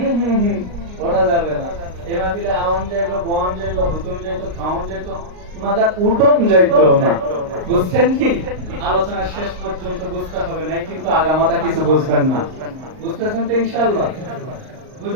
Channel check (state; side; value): late; left; 38 ms